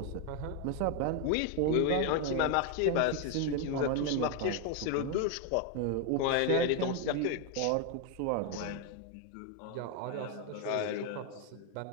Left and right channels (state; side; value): different; both; correlation 0.01